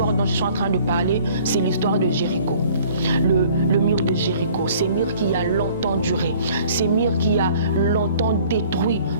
dont je suis en train de parler, c'est l'histoire de Jéricho. Le mur de Jéricho, ce mur qui a longtemps duré, ce mur qui a longtemps détruit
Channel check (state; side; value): inverted; both; correlation -0.53